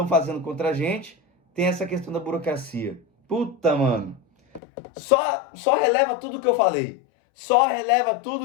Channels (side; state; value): right; drops out; at 4.6 s